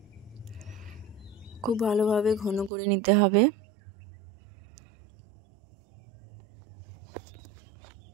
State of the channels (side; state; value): left; drops out; at 2.7 s